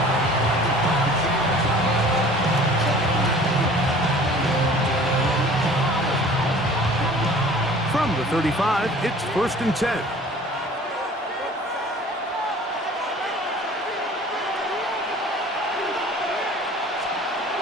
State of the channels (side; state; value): both; normal; correlation 0.47